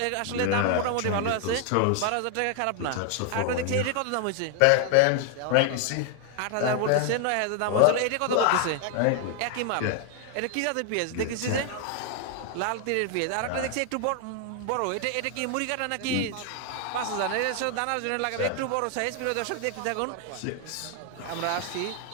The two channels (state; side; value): different; both; correlation 0.00